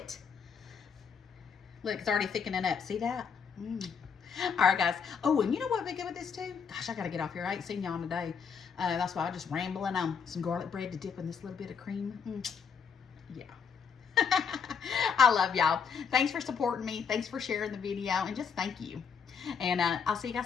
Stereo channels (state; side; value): quieter; right; 6.4 dB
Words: Look, it's already thickening up. See that? All right, guys. Oh, and you know what would be good with this too? Gosh, I got to get off here. I ain't seen y'all today. That's why I'm just rambling on. Some garlic bread to dip in this little bit of cream. Yeah. I love y'all. Thanks for supporting me. Thanks for sharing the video. And just thank you. And I'll see you